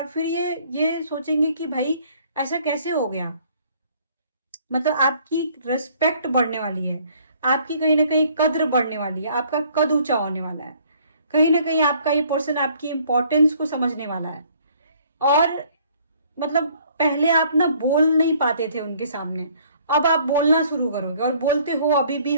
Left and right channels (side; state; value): both; inverted; correlation -0.59